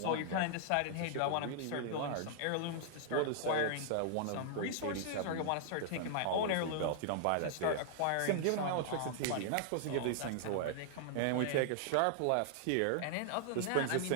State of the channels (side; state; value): both; different; correlation -0.01